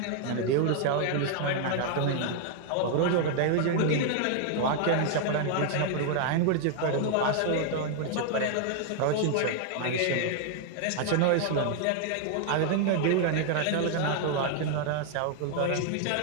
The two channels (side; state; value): both; different; correlation 0.00